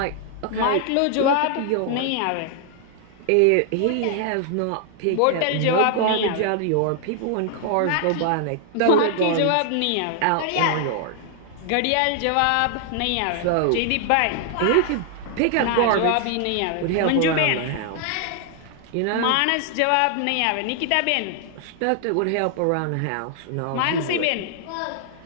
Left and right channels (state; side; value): different; both; correlation 0.00